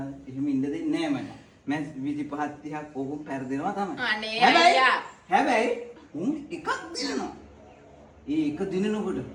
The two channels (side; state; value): both; identical; correlation 1.00